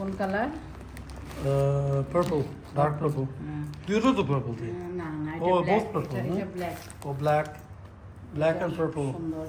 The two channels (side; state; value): both; identical; correlation 1.00